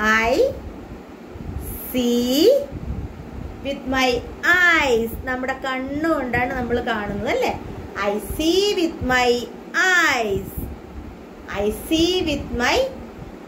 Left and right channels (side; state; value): both; identical; correlation 1.00